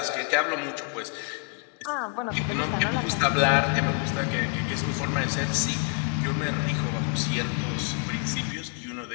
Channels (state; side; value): quieter; right; 36.1 dB